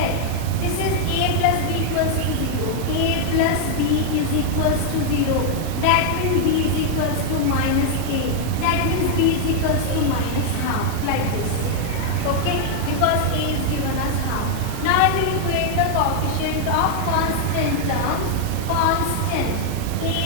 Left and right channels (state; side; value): different; both; correlation 0.00